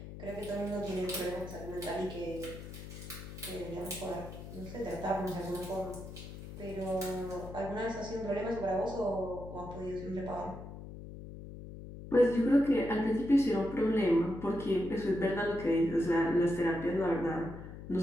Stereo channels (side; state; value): left; noise; hum, 12 dB below the sound